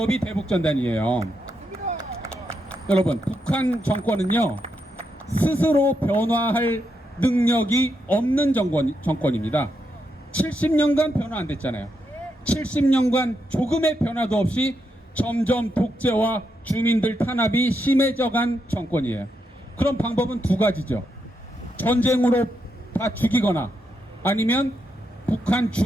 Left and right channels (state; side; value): normal; both; correlation 0.82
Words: 대북전단이에요. 여러분, 북한 정권은요, 스스로 변화할 능력이 없는 정권입니다. 70년간 변화 안 됐잖아요. 70년간 조금의 변화도 없이 점점 독재와 주민들 탄압이 심해져간 정권이에요. 그럼 방법은 두 가지죠. 전쟁으로 다 죽이거나 아니면 북한